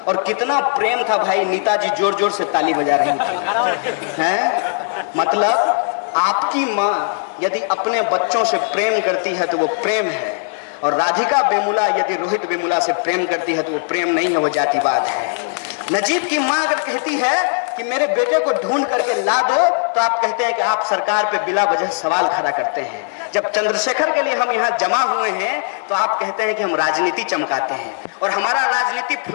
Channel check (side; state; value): right; silent; digital silence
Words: और कितना प्रेम था भाई, नेताजी जोर जोर से ताली बजा रही थी, हैं? मतलब आपकी माँ यदि अपने बच्चों से प्रेम करती है तो वो प्रेम है, और राधिका वेमुला यदि रोहित वेमुला से प्रेम करती है तो वो प्रेम नहीं है, वो जातिवाद है। नजीब की माँ अगर कहती है कि मेरे बेटे को ढूंढ करके ला दो, तो आप कहते हैं कि आप सरकार पे बिला वजह सवाल खड़ा करते हैं। जब चंद्रशेखर के लिए हम यहाँ जमा हुए हैं तो आप कहते हैं कि हम राजनीति चमकाते हैं। और हमारा राजनीति